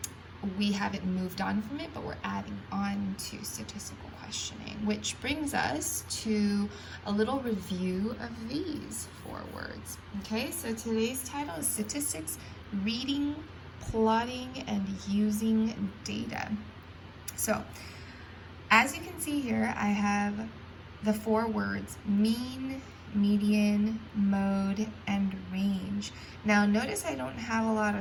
we haven't moved on from it, but we're adding on to statistical questioning, which brings us to a little review of these 4 words. Okay, so today's title is Statistics, Reading, Plotting, and Using Data. So, as you can see here, I have the 4 words mean, median, mode, and range. Now notice I don't have a lot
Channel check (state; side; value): identical; both; correlation 1.00